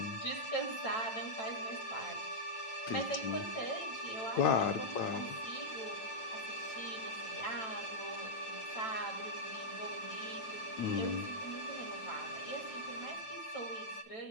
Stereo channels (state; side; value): late; right; 9.0 ms